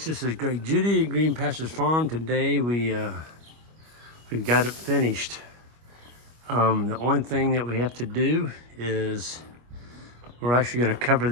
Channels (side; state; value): left; late; 25 ms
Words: This is Greg Judy at Green Pastures Farm. Today we've got it finished. The only thing that we have to do is we're actually going to cover